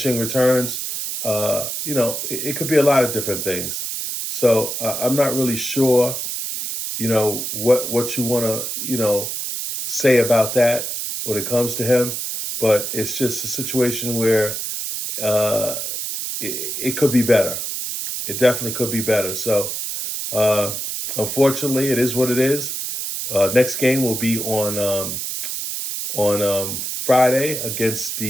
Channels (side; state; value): right; noise; hiss, 4 dB below the sound